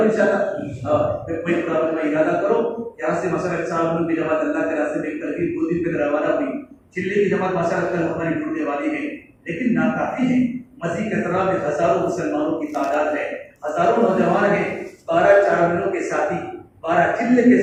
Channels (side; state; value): both; identical; correlation 1.00